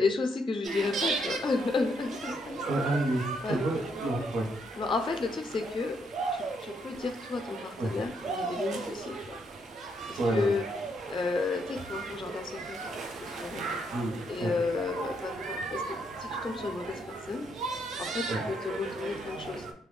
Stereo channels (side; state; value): both; normal; correlation 0.74